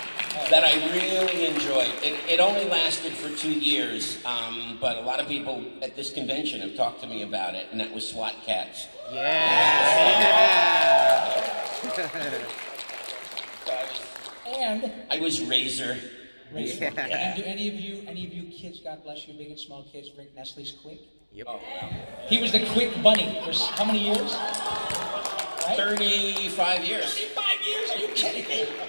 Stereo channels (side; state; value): both; inverted; correlation -1.00